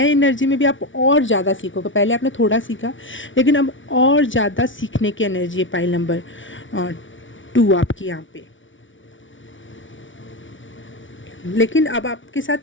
एनर्जी में भी आप और ज़्यादा सीखोगे। पहले आपने थोड़ा सीखा, लेकिन अब और ज़्यादा सीखने की एनर्जी है पाइल नंबर 2 आपकी यहाँ पे। लेकिन अब आपके साथ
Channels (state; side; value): late; right; 0.56 ms